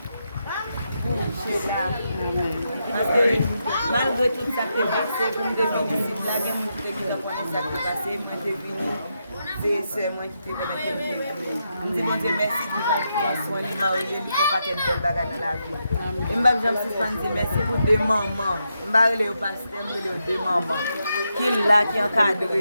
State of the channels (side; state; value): both; inverted; correlation -0.83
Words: pour Sheila. Parce que malgré tout ça qui est passé, pour me devenir ici, la guerre, je qui connaît ça qui est passé, moi je suis venu. C'est moi qui t'ai permis de me dire. Je dis bon Dieu merci pour ton soin, il m'a oublié, il faut pas qu'il y ait de belles bagages dans la vie. Et je me dis merci pour des mamans. Je me dis au pasteur, je me dis des mamans qui sont là, qui encadrent